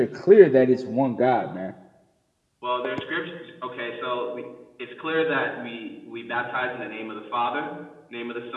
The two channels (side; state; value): both; identical; correlation 1.00